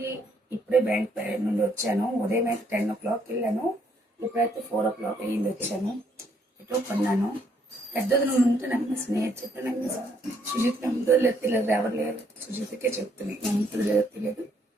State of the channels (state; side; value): normal; both; correlation 0.69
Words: ఇప్పుడే బ్యాంక్ నుండి వచ్చాను. ఉదయం అయితే 10 o'clock వెళ్ళాను. ఇప్పుడైతే 4 o'clock అయ్యింది వచ్చాను. ఎటో కొన్నాను. పెద్దది నువ్వు ఉంటే నమ్మేసి నేను చెప్పి నమ్మేసి సుజిత్ నమ్ముతుందో లేదు తెలియదు, ఎవరు లేరు. సుజిత్కే చెప్తున్నాయి నమ్ముతుందో లేదో తెలియదు.